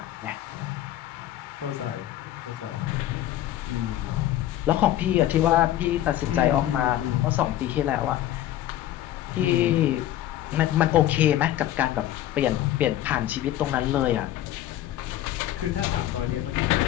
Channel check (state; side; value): quieter; right; 13.1 dB